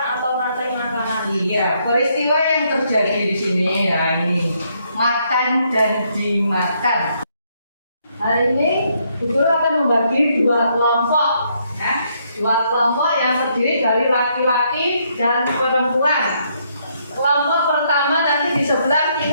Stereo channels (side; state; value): both; inverted; correlation -0.73